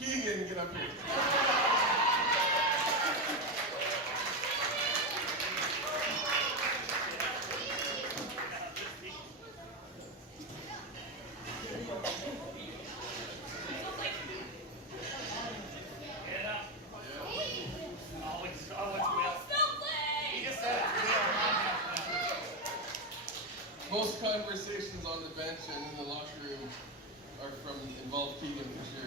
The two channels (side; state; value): both; normal; correlation 0.11